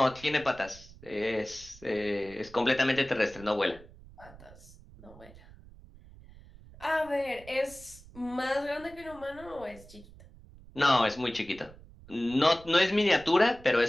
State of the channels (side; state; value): right; noise; rumble, 21 dB below the sound